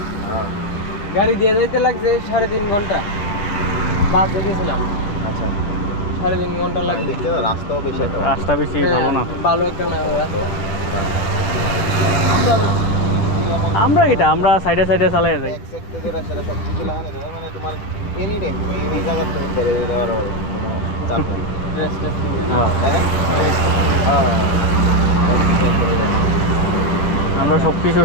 গাড়ি দিয়ে যাইতে লাগছে 3.5 ঘন্টা, বাসে গেছিলাম। আচ্ছা 3.5 ঘন্টা লাগছে। দেখতে তো রাস্তাও বেশি একটা রাস্তা বেশি ভালো না। ভালো একটা না রাস্তা। আমরা আমরা সাইডে সাইডে চালাই যাই। এক সেক্টর ধরে সেটা সব কিছু লাগানো যায়, মানে তোমার এনি টাইম তুমি এই জায়গা তুমি বেরিয়ে যেতে পারো, কোনো চাপ নেই। ড্রেস ট্রেস কিনে। হ্যাঁ, হ্যাঁ আমরা সব কিছু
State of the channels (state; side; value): late; right; 10 ms